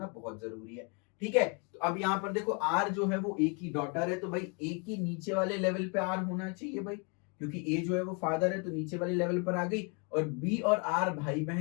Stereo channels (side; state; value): right; quieter; 34.8 dB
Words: बहुत जरूरी है। ठीक है, तो अब यहाँ पर देखो आर जो है वो ए की डॉटर है, तो भाई ए की नीचे वाले लेवल पे आर होना चाहिए भाई, क्योंकि ए जो है वो फादर है तो नीचे वाले लेवल पर आ गई, और बी और आर भाई